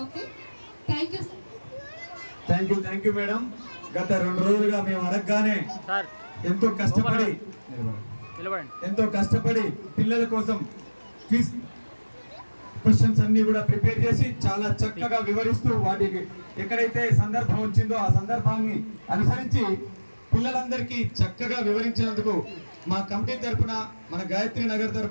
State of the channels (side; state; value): both; inverted; correlation -1.00